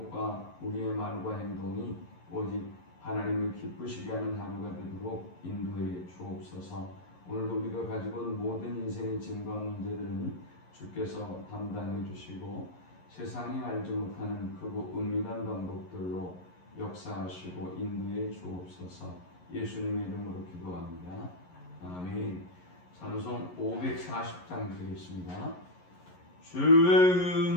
우리의 말과 행동이 오직 하나님을 기쁘시게 하는 하루가 되도록 인도해 주옵소서. 오늘도 우리가 가지고 온 모든 인생의 짐과 문제들은 주께서 담당해 주시고 세상이 알지 못하는 크고 은밀한 방법들로 역사하시고 인도해 주옵소서. 예수님의 이름으로 기도합니다. 아멘. 찬송 540장 드리겠습니다. 주의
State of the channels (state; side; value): late; right; 11 ms